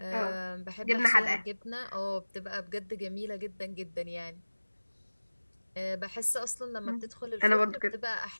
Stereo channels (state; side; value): inverted; both; correlation -1.00